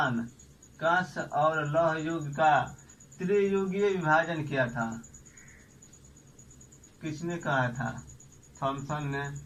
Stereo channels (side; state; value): both; identical; correlation 1.00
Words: कांस्य और लौह युग का त्रियुगीय विभाजन किया था। किसने कहा था? थॉमसन ने,